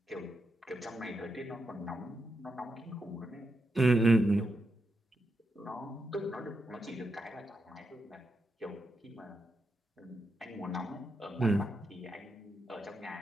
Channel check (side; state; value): both; normal; correlation 0.85